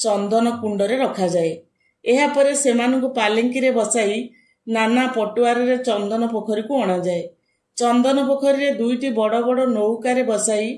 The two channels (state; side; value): identical; both; correlation 1.00